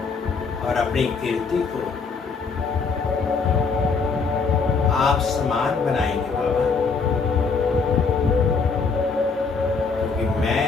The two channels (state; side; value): quieter; right; 4.9 dB